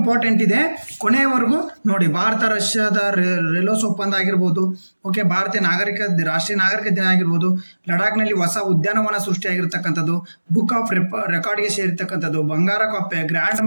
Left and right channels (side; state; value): both; inverted; correlation -1.00